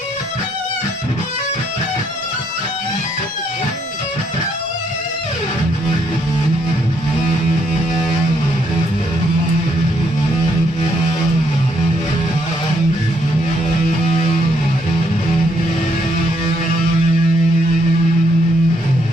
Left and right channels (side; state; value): both; normal; correlation 0.73